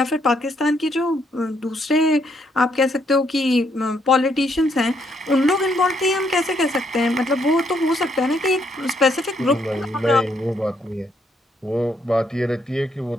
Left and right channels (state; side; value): normal; both; correlation 0.73